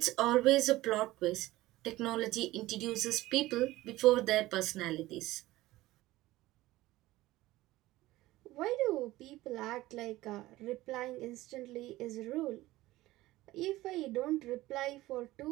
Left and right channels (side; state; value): left; quieter; 17.4 dB